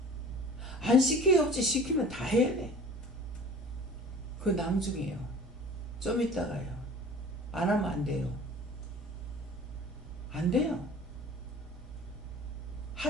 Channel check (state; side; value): normal; both; correlation 0.43